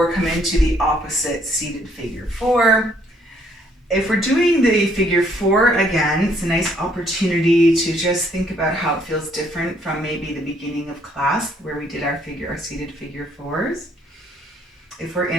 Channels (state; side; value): normal; both; correlation 0.67